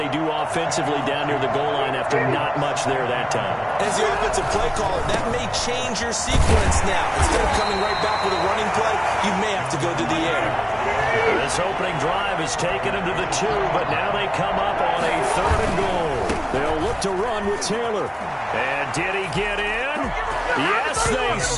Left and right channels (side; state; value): both; identical; correlation 1.00